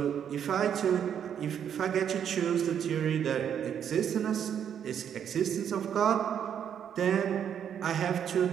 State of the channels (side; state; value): left; quieter; 8.7 dB